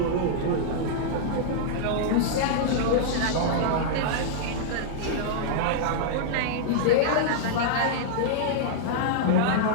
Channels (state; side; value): different; both; correlation -0.02